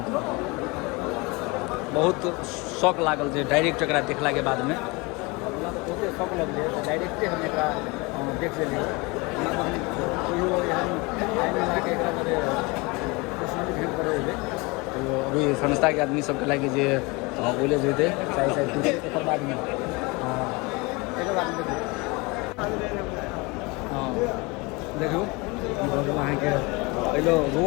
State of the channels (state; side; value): quieter; right; 26.2 dB